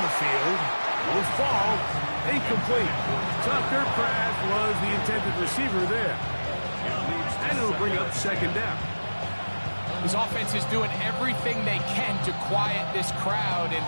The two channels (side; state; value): both; inverted; correlation -1.00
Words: the field. Will fall. Incomplete. Tucker Craft was the intended receiver there. And it'll bring up 2nd down. His offense is doing everything they can to quiet this crowd, and